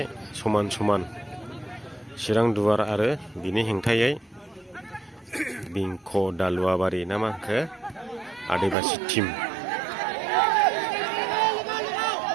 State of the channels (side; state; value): left; drops out; at 8.8 s